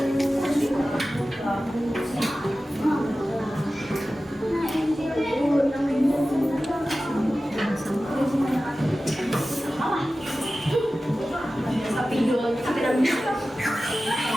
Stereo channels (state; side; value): normal; both; correlation 0.95